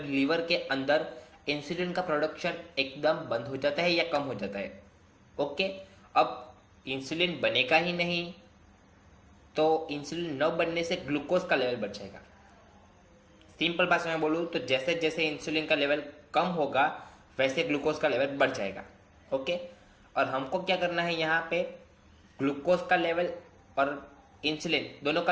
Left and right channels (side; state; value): both; identical; correlation 1.00